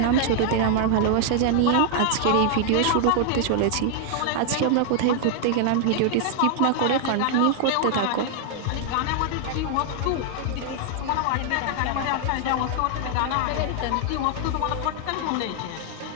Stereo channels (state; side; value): different; both; correlation 0.00